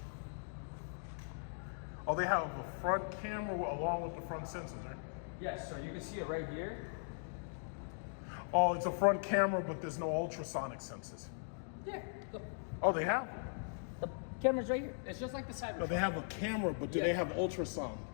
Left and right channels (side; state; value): right; silent; digital silence